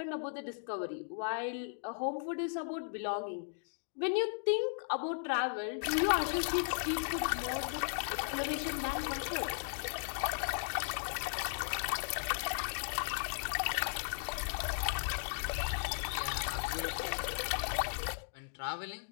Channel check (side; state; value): right; silent; digital silence